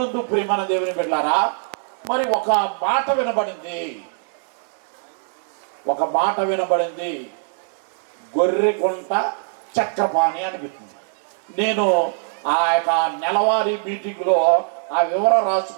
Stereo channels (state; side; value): silent; left; digital silence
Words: ప్రియమైన దేవుని బిడ్డలారా, మరి ఒక మాట వినబడింది, గొర్రెగుంట చక్రపాణి అనిపిస్తుంది. నేను ఆ యొక్క నెలవారీ మీటింగ్లో ఆ వివరం